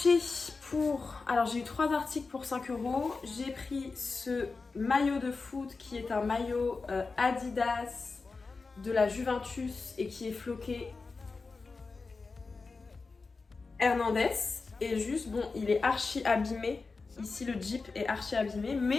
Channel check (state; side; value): quieter; right; 4.2 dB